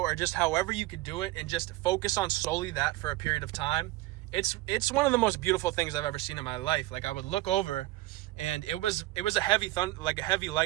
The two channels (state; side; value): quieter; left; 18.4 dB